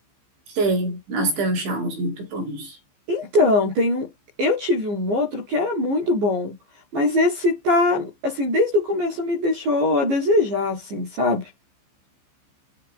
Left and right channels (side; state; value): left; late; 15 ms